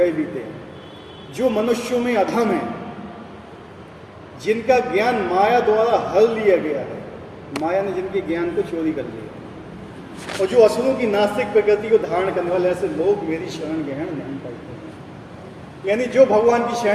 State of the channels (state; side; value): identical; both; correlation 1.00